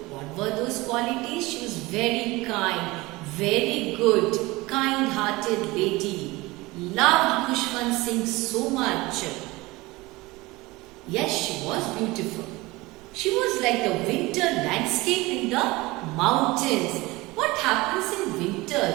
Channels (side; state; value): left; quieter; 21.5 dB